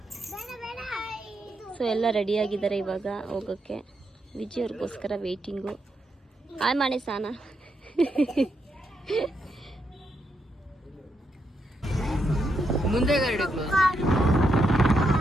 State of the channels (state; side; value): normal; both; correlation 0.81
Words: ಸೊ ಎಲ್ಲ ರೆಡಿಯಾಗಿದ್ದಾರೆ ಇವಾಗ ಹೋಗೋಕ್ಕೆ. ವಿಜಯ್ ಅವ್ರಿಗೋಸ್ಕರ ವೆಯ್ಟಿಂಗು. ಆಯ್ ಮಾಡಿ ಸಾನ ಮುಂದೆ